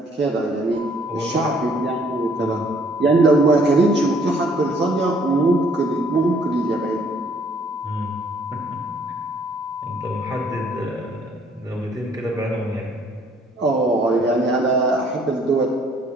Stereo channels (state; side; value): normal; both; correlation 0.62